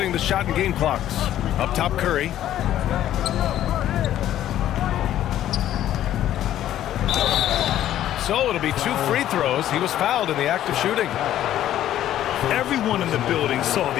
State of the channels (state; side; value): quieter; right; 12.2 dB